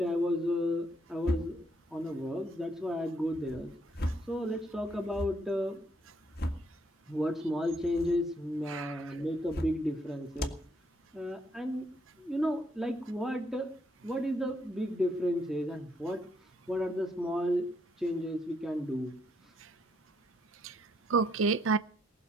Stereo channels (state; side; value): normal; both; correlation 0.73